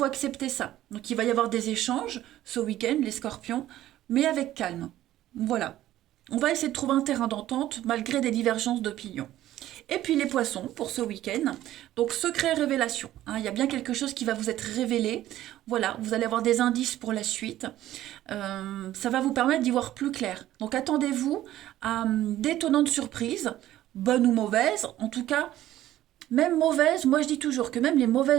accepter ça. Donc il va y avoir des échanges ce week-end, les scorpions, mais avec calme. Voilà. On va essayer de trouver un terrain d'entente malgré des divergences d'opinion. Et puis les poissons pour ce week-end. Donc secret révélation, hein, il y a bien quelque chose qui va vous être révélé. Voilà, vous allez avoir des indices pour la suite. Ça va vous permettre d'y voir plus clair. Donc attendez-vous à d'étonnantes surprises, bonnes ou mauvaises. En tout cas, même mauvaises, moi je dis toujours que même les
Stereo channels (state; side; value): quieter; left; 13.8 dB